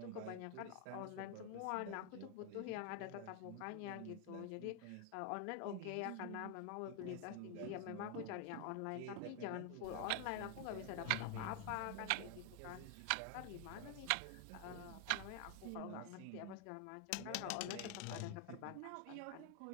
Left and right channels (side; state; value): both; different; correlation 0.00